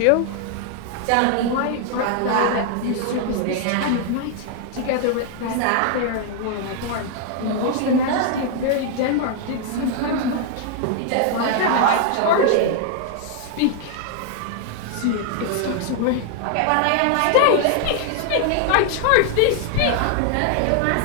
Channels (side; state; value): both; different; correlation 0.00